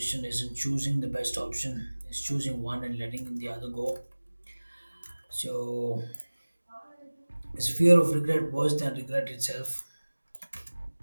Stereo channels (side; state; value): both; inverted; correlation -1.00